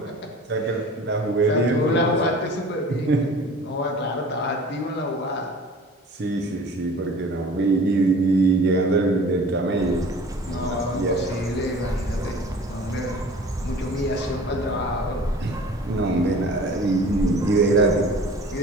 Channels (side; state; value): both; normal; correlation 0.44